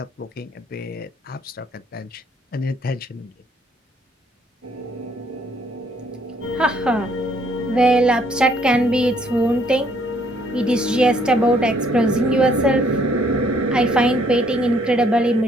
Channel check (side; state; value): both; normal; correlation 0.66